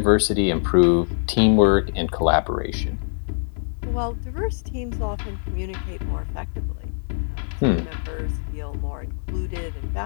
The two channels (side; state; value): right; silent; 63 dB below the other